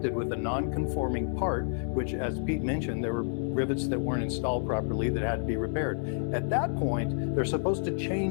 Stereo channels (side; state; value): right; silent; 58 dB below the other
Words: with a non-conforming part, which, as Pete mentioned, there were rivets that weren't installed properly that had to be repaired. At that point, they're supposed to